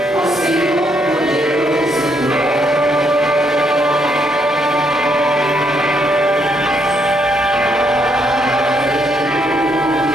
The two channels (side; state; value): both; normal; correlation 0.74